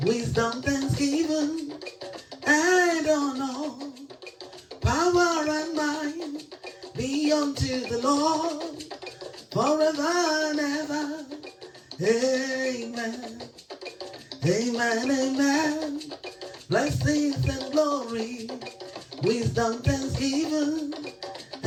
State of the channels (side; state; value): both; identical; correlation 1.00